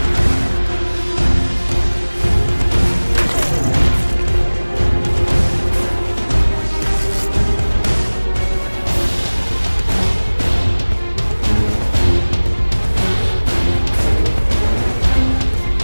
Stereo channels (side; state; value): both; inverted; correlation -1.00